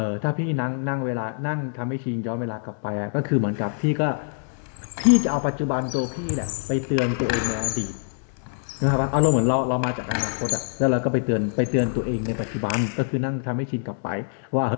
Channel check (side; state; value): right; silent; digital silence